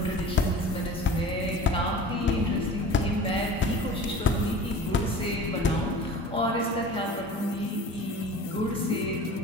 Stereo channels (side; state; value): both; normal; correlation 0.40